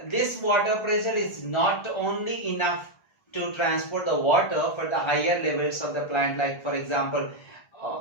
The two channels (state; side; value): late; right; 1.3 ms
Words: this water pressure is not only enough to transport the water for the higher levels of the plant, like for example